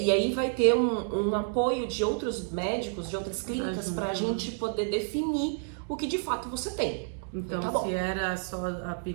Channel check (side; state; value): left; silent; digital silence